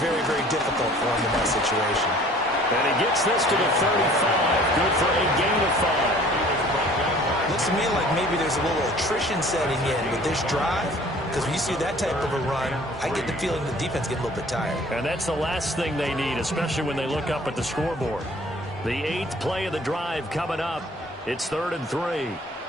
very difficult for him in that situation. And he gets this to the 35. Good for a gain of 5. Looks to me like maybe there's a little attrition setting in with this drive. Because when you see that type of a run, I get the feeling the defense get a little bit tired. And that's the last thing they need, especially when they look up at the scoreboard. The 8th play of the drive coming up. It's 3rd and 3.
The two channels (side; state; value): both; normal; correlation 0.51